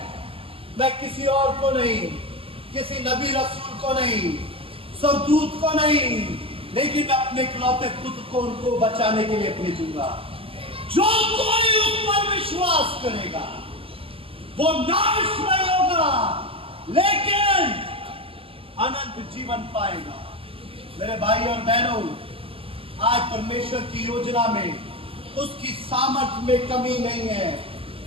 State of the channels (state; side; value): late; left; 0.27 ms